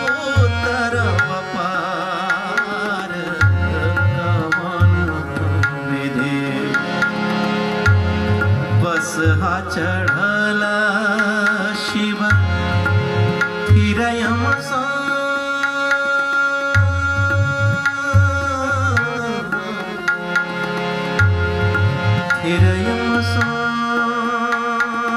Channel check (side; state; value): both; identical; correlation 1.00